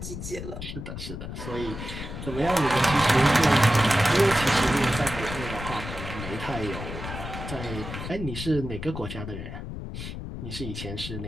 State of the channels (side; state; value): left; noise; rumble, 8 dB below the sound